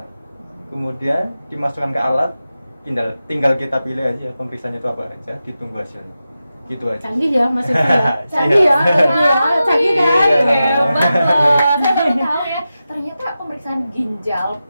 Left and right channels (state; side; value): inverted; both; correlation -0.92